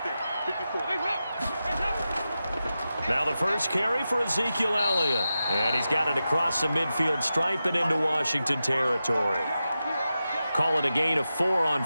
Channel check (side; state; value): both; inverted; correlation -0.91